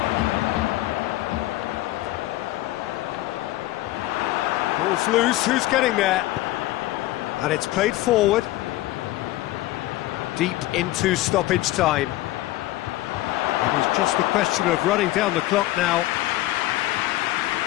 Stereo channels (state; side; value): quieter; right; 16.8 dB